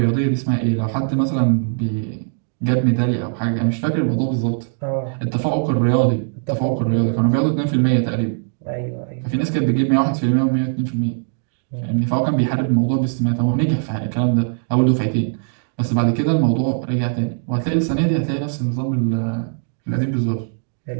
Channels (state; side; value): silent; left; digital silence